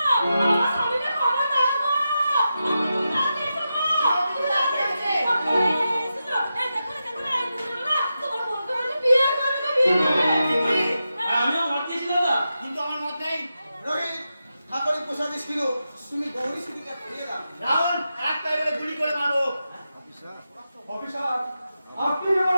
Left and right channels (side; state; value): both; inverted; correlation -0.89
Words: আমিও মত দিয়েছি দাদা, কিন্তু আমার মত নেই। রোহিত, ঠাকুরের প্রসাদে ছিল তুমি গৌরী সুদিকে ফিরিয়ে দাও। রাবণ একটা এবারে গুলি করে মারো। অফিসার, আপনি যেমন